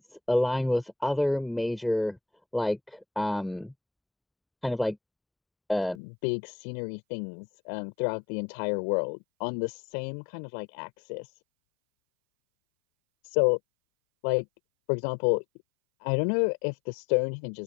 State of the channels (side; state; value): right; drops out; at 6.0 s